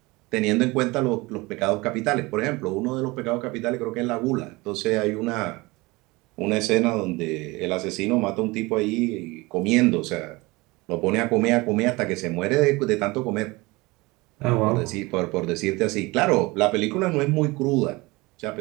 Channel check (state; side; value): quieter; left; 23.1 dB